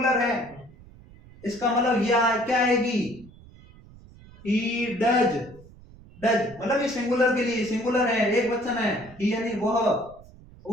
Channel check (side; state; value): right; noise; rumble, 22 dB below the sound